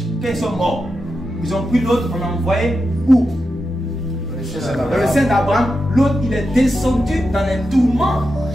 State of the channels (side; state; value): both; normal; correlation 0.89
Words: quand ils sont morts, ils ont pris l'autre, on a envoyé où? Dans le sein d'Abraham. L'autre, il est descendu dans les tourments